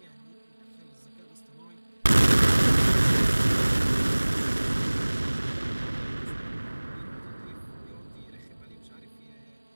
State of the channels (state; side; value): inverted; both; correlation -1.00